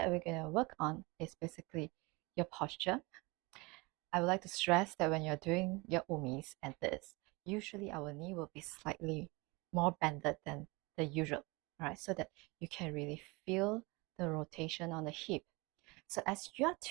we're going to work on is basically your posture. I would like to stress that when you're doing your umis and this, usually our knee will be slightly more bended than the usual, right? So that you can really feel the rotation on the hip. So as you're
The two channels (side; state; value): left; quieter; 25.7 dB